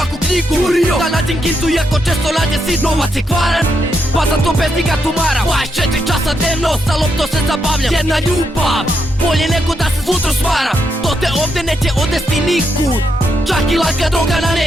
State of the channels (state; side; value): normal; both; correlation 0.80